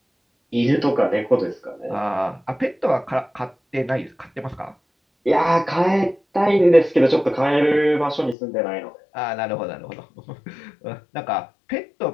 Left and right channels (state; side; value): drops out; right; at 8.3 s